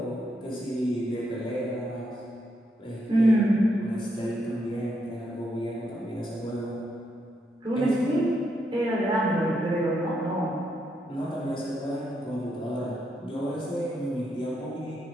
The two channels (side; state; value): both; normal; correlation 0.79